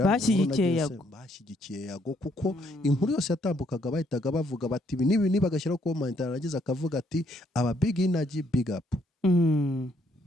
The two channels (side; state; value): both; normal; correlation 0.70